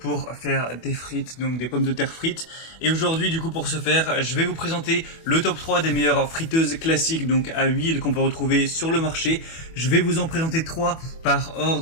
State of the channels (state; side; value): late; right; 24 ms